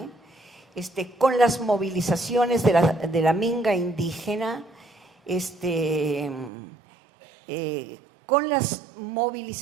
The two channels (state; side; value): drops out; left; at 6.5 s